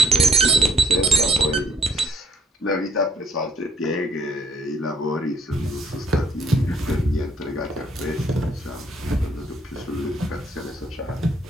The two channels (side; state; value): both; normal; correlation 0.66